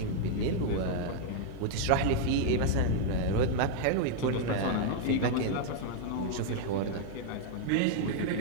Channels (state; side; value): different; both; correlation -0.01